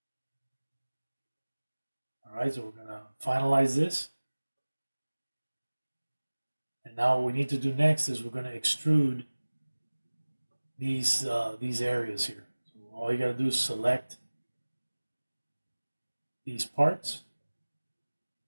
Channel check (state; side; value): inverted; both; correlation -1.00